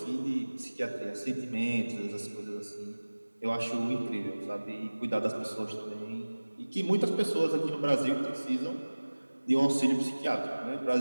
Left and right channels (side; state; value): both; inverted; correlation -1.00